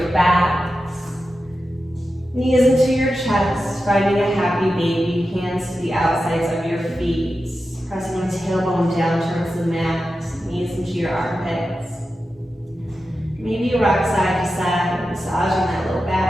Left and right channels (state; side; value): normal; both; correlation 0.91